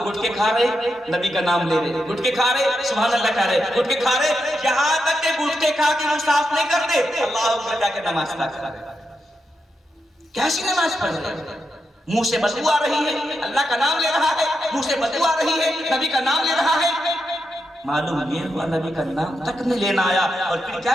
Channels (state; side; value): normal; both; correlation 0.85